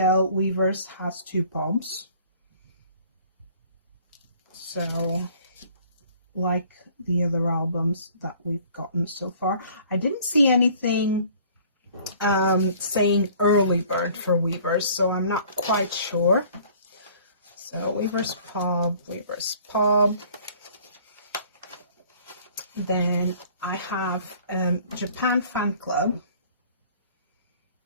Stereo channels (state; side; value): inverted; both; correlation -0.53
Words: Weverse has 2 pops. So, like the other albums that we've gotten so far. I didn't see anything saying early bird for Weverse, so I'm not quite sure. So Weverse Pop. Then I have Japan Fan Club.